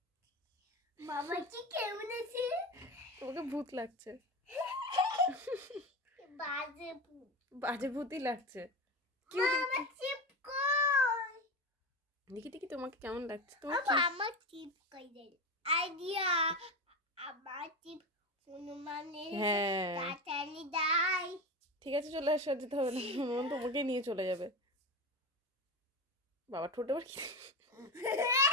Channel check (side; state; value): both; normal; correlation 0.22